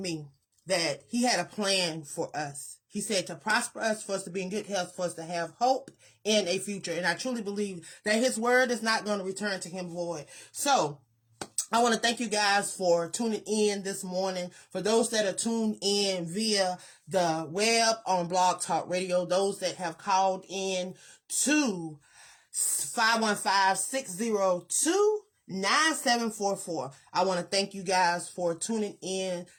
that he had a plan for us. He said to prosper us, for us to be in good health, for us to have hope in a future. And I truly believe that his word is not going to return to him void. So I want to thank you guys for tuning in this morning. For those that are tuned in via the web on Blog Talk Radio, those that have called in to 515-602-9744. I want to thank you guys for tuning in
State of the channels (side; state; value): both; identical; correlation 1.00